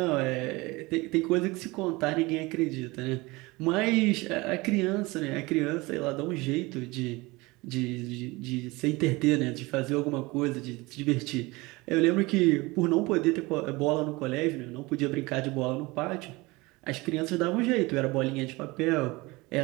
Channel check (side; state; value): left; quieter; 22.9 dB